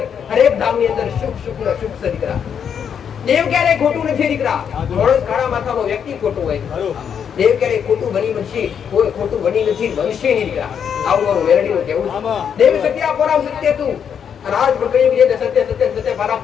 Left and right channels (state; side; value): quieter; right; 7.8 dB